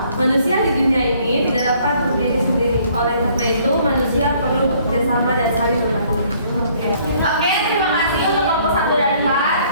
manusia di dunia ini tidak dapat berdiri sendiri. Oleh karena itu manusia perlu bekerjasama dan saling membantu. Oke, terima kasih untuk kelompok 1 dan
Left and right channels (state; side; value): inverted; both; correlation -0.62